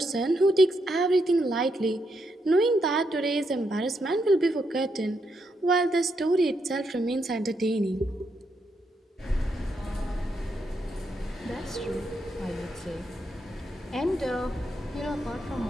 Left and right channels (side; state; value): both; normal; correlation 0.80